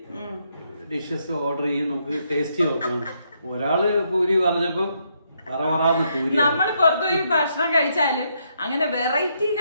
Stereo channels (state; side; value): inverted; both; correlation -0.76